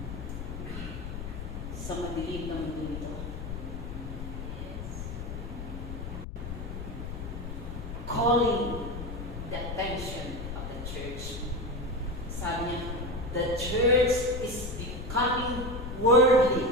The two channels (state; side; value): noise; left; rumble, 7 dB below the sound